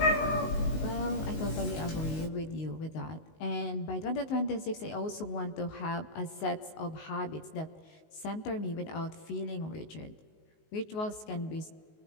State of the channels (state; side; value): late; right; 19 ms